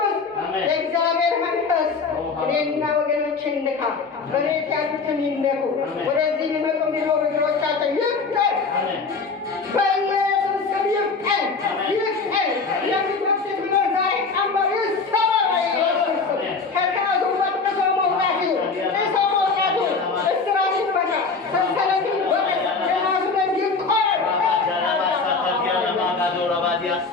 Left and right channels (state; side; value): quieter; right; 4.5 dB